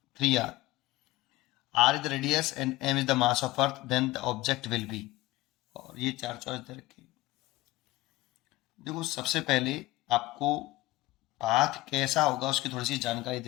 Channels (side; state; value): right; quieter; 18.4 dB